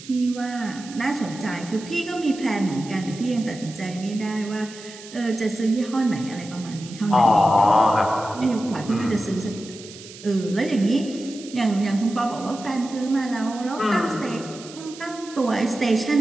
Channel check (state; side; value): noise; right; hiss, 17 dB below the sound